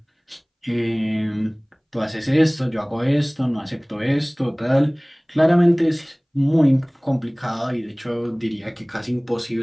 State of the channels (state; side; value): identical; both; correlation 1.00